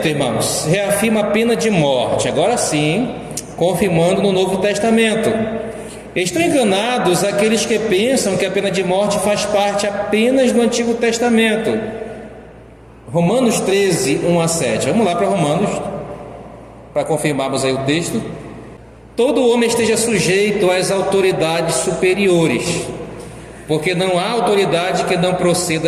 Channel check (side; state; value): both; identical; correlation 1.00